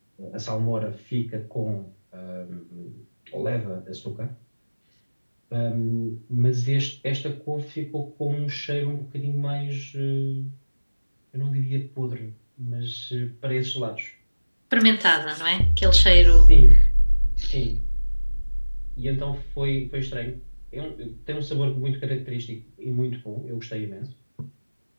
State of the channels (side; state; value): both; inverted; correlation -1.00